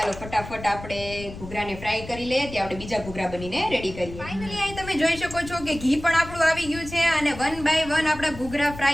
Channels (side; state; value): left; noise; rumble, 13 dB below the sound